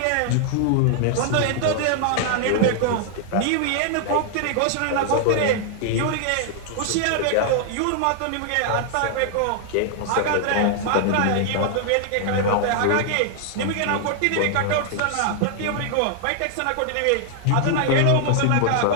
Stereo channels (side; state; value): both; different; correlation 0.00